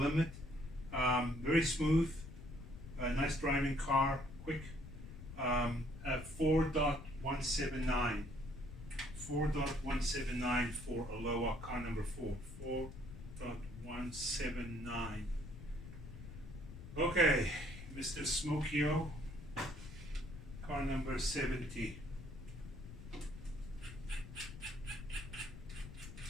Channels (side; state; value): left; noise; rumble, 12 dB below the sound